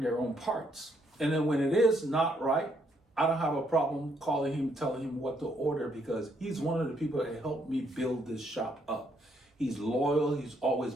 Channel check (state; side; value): normal; both; correlation 0.72